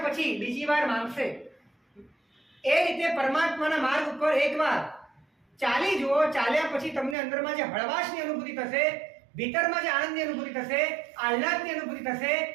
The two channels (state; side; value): drops out; left; at 7.2 s